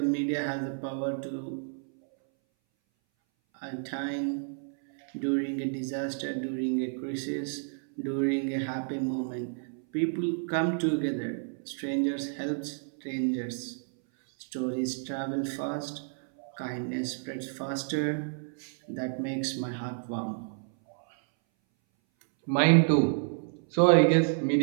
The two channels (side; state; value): left; silent; 58 dB below the other